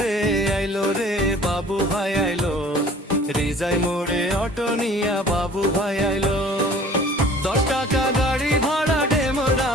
রে বাবু ভাই আইলো, রিজাই মোড়ে অটো নিয়া বাবু ভাই আইলো। 10 টাকা গাড়ি ভাড়া ডেমরা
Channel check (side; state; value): both; normal; correlation 0.49